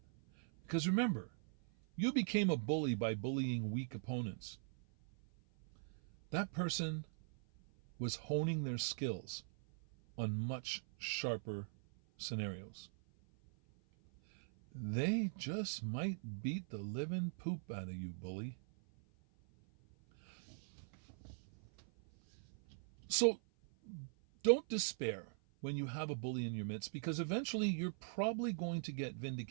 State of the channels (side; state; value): left; silent; 50 dB below the other